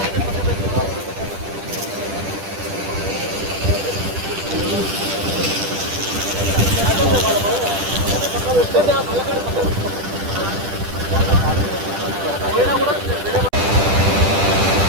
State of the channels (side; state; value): left; late; 10 ms